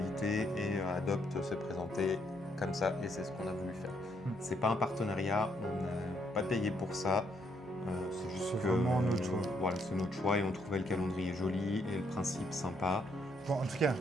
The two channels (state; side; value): noise; left; hum, 28 dB below the sound